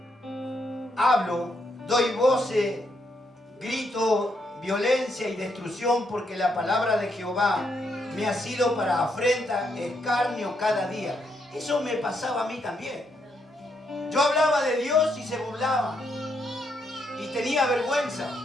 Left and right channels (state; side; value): normal; both; correlation 0.77